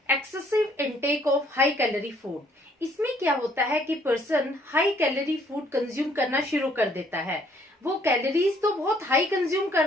excessive intake of high calorie food. इसमें क्या होता है कि person high calorie food consume करना शुरू कर देता है। वो कैलोरीज तो बहुत हाई कंज्यूम कर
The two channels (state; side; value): normal; both; correlation 0.64